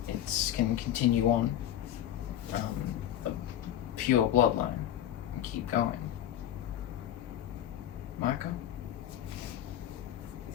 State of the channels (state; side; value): quieter; right; 11.5 dB